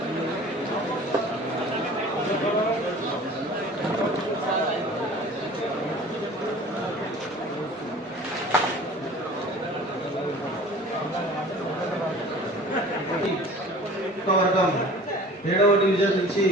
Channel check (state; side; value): normal; both; correlation 0.44